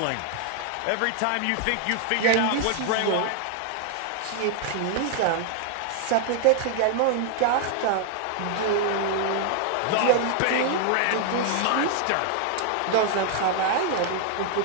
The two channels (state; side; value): different; both; correlation 0.00